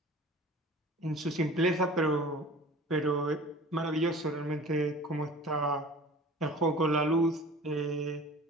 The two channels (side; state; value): both; normal; correlation 0.43